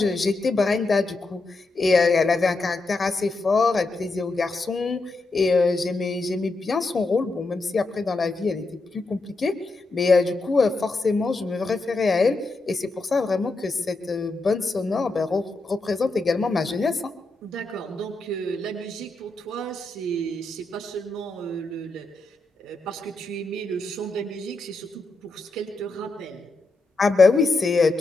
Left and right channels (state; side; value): quieter; right; 3.2 dB